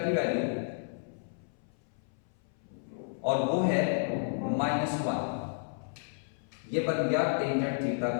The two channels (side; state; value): right; silent; 56 dB below the other